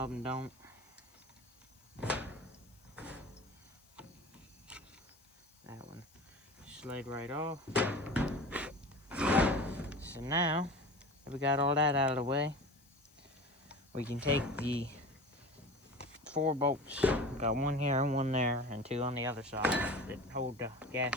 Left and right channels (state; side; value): noise; left; hiss, 29 dB below the sound